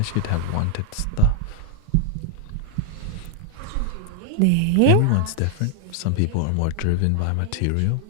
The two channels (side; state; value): both; different; correlation 0.00